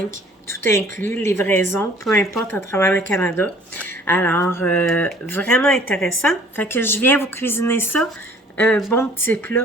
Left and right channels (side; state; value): both; normal; correlation 0.54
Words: tout inclus, livraison, peu importe à travers le Canada. Alors, vraiment intéressant. Fait que je viens vous cuisiner ça. Un bon petit